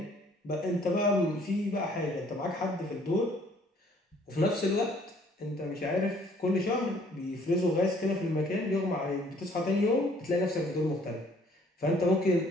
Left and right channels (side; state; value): both; normal; correlation 0.60